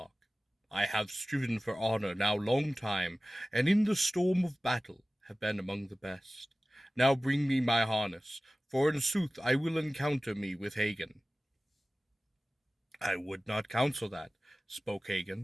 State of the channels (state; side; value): normal; both; correlation 0.97